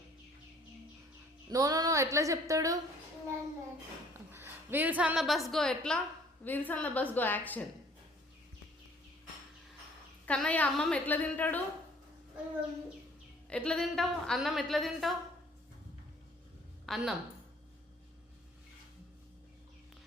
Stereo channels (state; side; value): normal; both; correlation 0.57